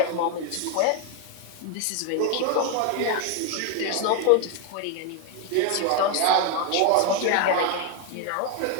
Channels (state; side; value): different; both; correlation 0.01